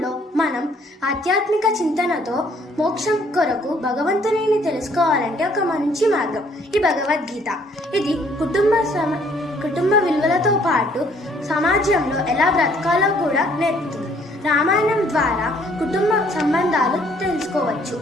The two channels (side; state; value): both; normal; correlation 0.63